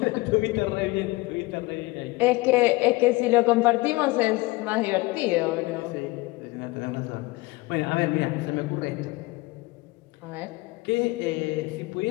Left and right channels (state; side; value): quieter; right; 21.8 dB